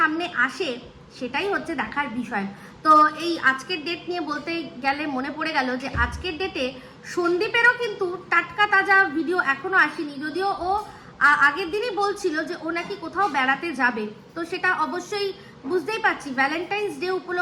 আসে, সেটাই হচ্ছে দেখার বিষয়। তো এই আজকের ডেট নিয়ে বলতে গেলে মনে পড়ে গেল যে আজকের ডেটে সন্দীপেরও কিন্তু টাটকা তাজা ভিডিও এখনো আসেনি। যদিও ও আগের দিনই বলছিল যে ও নাকি কোথাও বেড়াতে যাবে, তো সেটা অবশ্যই বুঝতেই পারছি ভ্যালেন্টাইন্স ডে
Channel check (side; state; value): both; identical; correlation 1.00